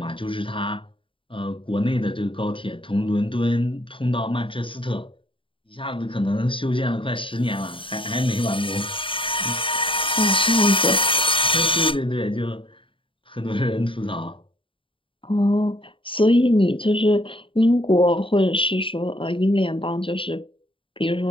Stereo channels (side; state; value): right; late; 0.25 ms